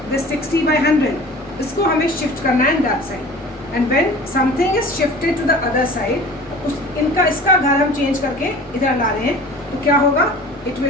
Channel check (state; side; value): normal; both; correlation 0.42